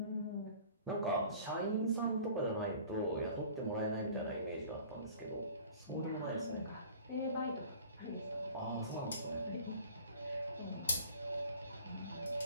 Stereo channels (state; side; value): inverted; both; correlation -0.46